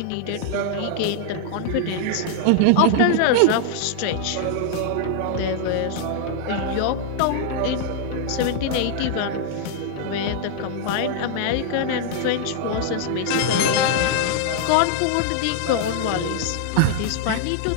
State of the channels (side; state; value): both; different; correlation -0.01